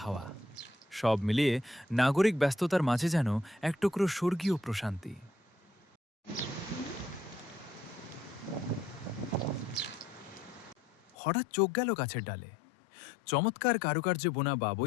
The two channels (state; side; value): drops out; right; at 11.1 s